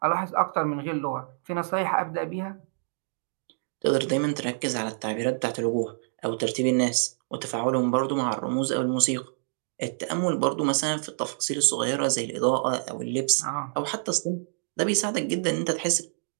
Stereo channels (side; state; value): left; silent; digital silence